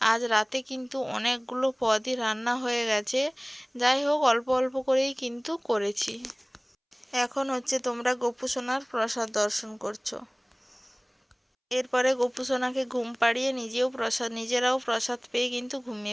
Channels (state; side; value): identical; both; correlation 1.00